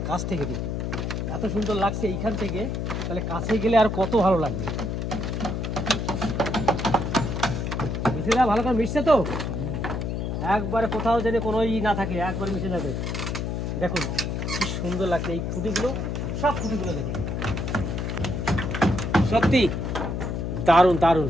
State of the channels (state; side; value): noise; left; hum, 2 dB below the sound